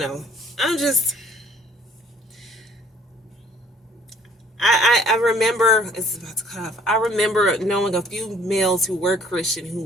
I remember, it's about to cut off. I remember knowing a few males who were Christian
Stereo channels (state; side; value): normal; both; correlation 0.57